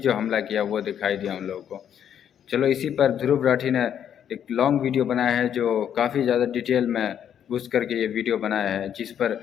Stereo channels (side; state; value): right; quieter; 9.2 dB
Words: हमला किया वो दिखाई दिया उन लोगों को। चलो, इसी पर ध्रुव राठी ने एक लॉन्ग वीडियो बनाया है जो काफ़ी ज़्यादा डिटेल में घुस करके ये वीडियो बनाया है, जिस पर